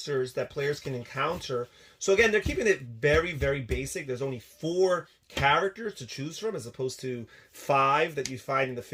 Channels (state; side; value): identical; both; correlation 1.00